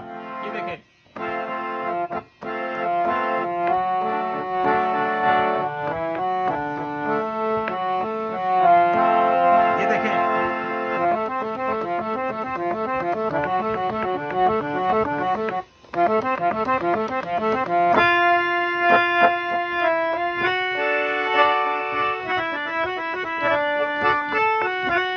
ये देखें, ये देखें,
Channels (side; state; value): both; identical; correlation 1.00